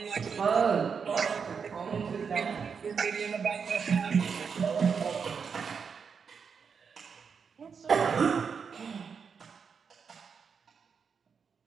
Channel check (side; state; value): left; quieter; 6.1 dB